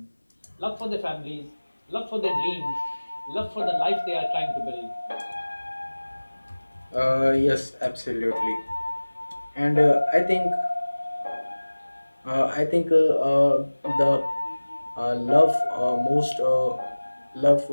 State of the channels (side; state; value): both; inverted; correlation -1.00